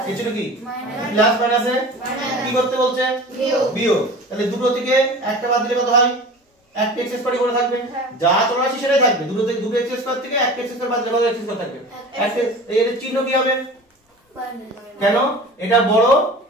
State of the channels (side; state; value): both; normal; correlation 0.37